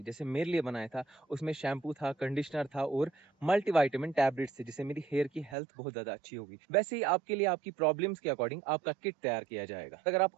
जैसे मेरे लिए बनाया था। उसमें शैम्पू था, कंडीशनर था और मल्टीविटामिन टैबलेट्स थे, जिससे मेरी हेयर की हेल्थ बहुत ज्यादा अच्छी होगी। वैसे ही आपके लिए आपकी प्रॉब्लम्स के अकॉर्डिंग आपका किट तैयार किया जाएगा। अगर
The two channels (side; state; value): left; drops out; at 5.6 s